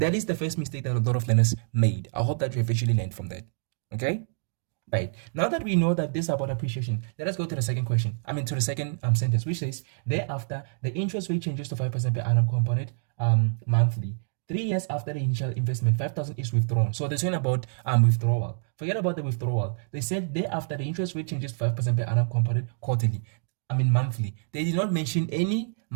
is the first mistake that a lot of learners made. I hope that you have actually learned from that. Okay? Right. Now that we know that this is about appreciation, let us go to the second question. To the second sentence, which says, thereafter, the interest rate changes to 5% per annum compounded monthly. 3 years after the initial investment, 5,000 is withdrawn. So they're saying about withdrawal. Forget about the withdrawal. They said thereafter the interest rate changes 5% per annum compounded quarterly. Monthly. They did not mention any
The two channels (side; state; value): left; silent; digital silence